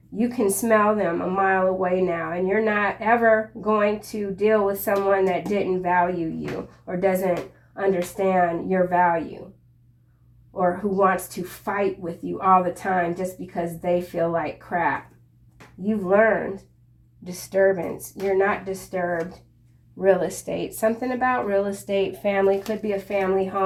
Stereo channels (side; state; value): both; identical; correlation 1.00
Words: You can smell them a mile away now, and you're not ever going to deal with someone that didn't value you or doesn't understand your value, or who wants to fight with you all the time just because they feel like crap. You've learned. Disturbance. You're not disturbed. Real estate. Something about real estate. Family. Could be a family